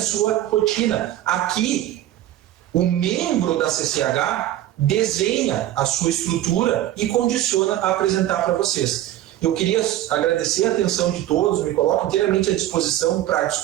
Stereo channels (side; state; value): left; quieter; 13.3 dB